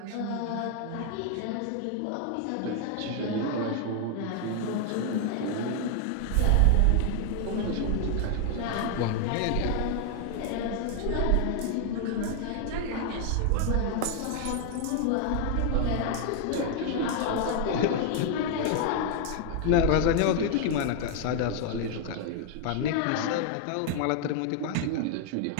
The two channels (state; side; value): different; both; correlation 0.00